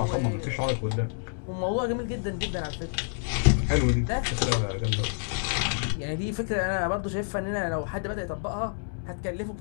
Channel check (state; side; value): silent; right; digital silence